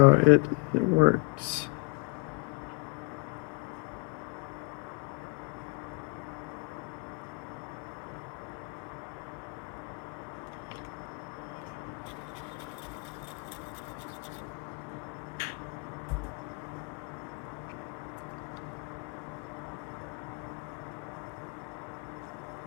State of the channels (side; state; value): right; quieter; 28.9 dB